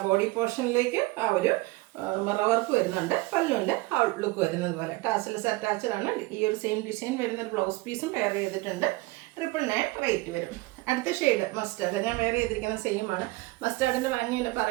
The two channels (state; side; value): quieter; left; 21.8 dB